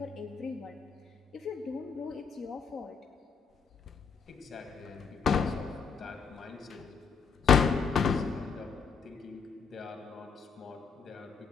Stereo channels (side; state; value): right; quieter; 5.8 dB